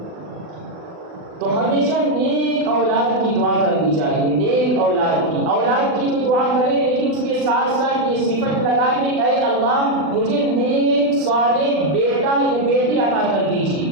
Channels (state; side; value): late; left; 40 ms